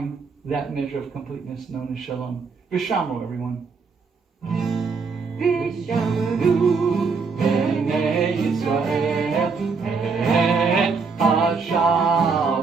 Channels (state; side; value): quieter; left; 4.9 dB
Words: that measure of completeness known as Shalom. Vishamru, everyone. Vishamru Bnei Yisrael et